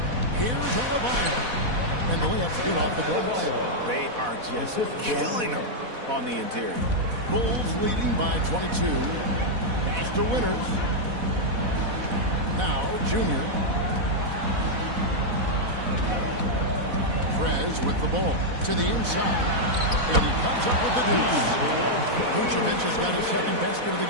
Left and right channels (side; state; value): left; late; 4.1 ms